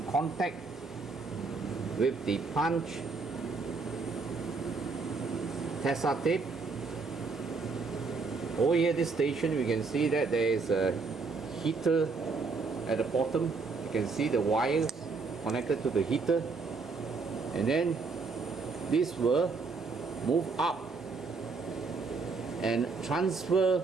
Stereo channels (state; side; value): quieter; left; 4.3 dB